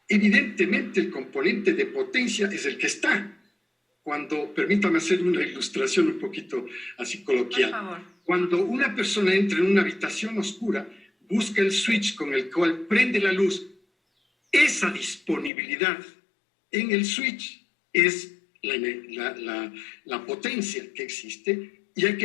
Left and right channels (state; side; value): drops out; right; at 15.5 s